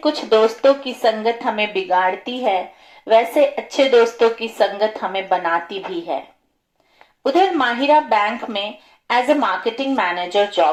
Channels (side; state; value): both; identical; correlation 1.00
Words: दोस्तों की संगत हमें बिगाड़ती है, वैसे अच्छे दोस्तों की संगत हमें बनाती भी है। उधर माहिरा बैंक में as a marketing manager